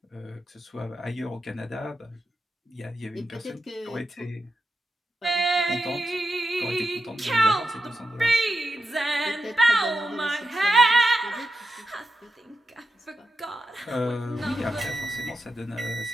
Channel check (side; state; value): both; normal; correlation 0.88